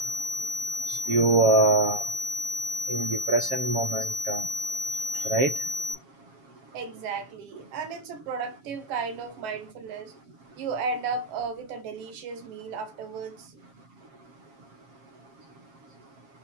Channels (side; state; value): left; late; 7.4 ms